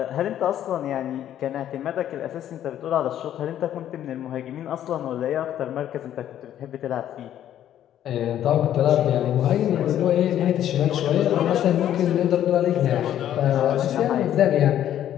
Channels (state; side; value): quieter; right; 11.2 dB